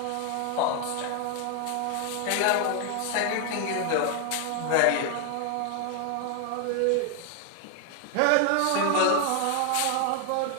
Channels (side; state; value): both; different; correlation 0.01